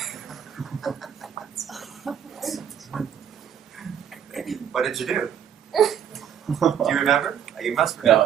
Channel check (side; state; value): left; quieter; 8.9 dB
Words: What did you do? Do you remember? You must